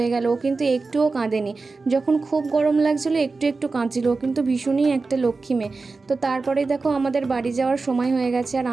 গেল। ও কিন্তু একটুও কাঁদেনি। যখন খুব গরম লাগছিল একটু একটু কাঁদছিল, ও কিন্তু ভীষণই একটা লক্ষ্মী মেয়ে। তো তারপরে দেখো আমাদের বাড়ি যাওয়ার সময় হয়ে গেছে, আর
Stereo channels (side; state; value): left; quieter; 4.0 dB